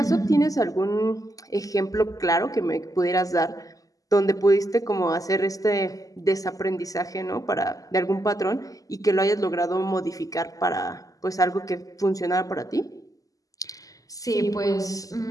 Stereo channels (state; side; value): late; right; 0.17 ms